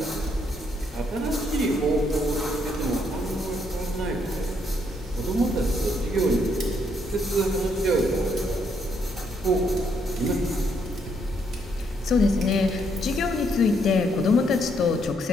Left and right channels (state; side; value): normal; both; correlation 0.73